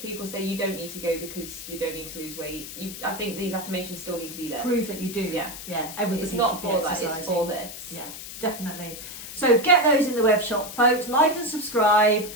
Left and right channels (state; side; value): noise; left; hiss, 11 dB below the sound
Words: people say you don't need to go because you don't need to lose weight, I think these affirmations still need to be there. Prove that you do. Yeah. Yeah. Everybody it's not should for be that, exercising. it's for this. Yeah, definitely. So get those in the web shop, folks. Like and subscribe